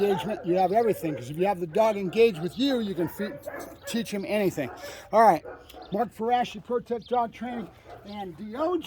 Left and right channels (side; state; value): both; identical; correlation 1.00